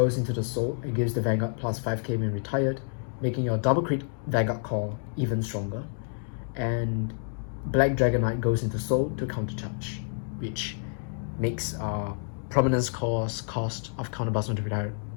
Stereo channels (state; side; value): silent; right; 59 dB below the other